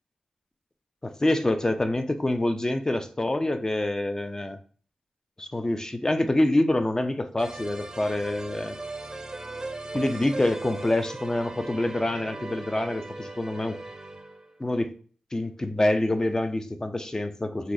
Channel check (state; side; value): normal; both; correlation 0.97